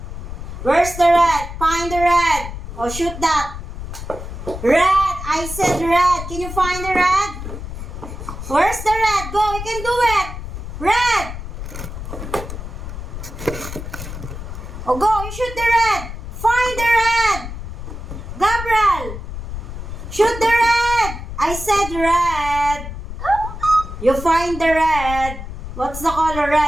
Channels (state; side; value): noise; left; rumble, 8 dB below the sound